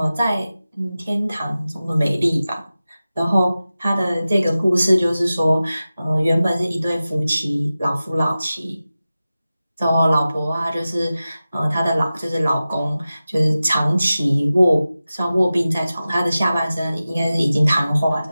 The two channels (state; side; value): inverted; both; correlation -0.95